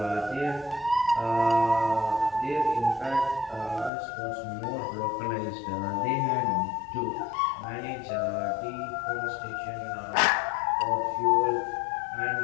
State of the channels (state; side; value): drops out; right; at 3.9 s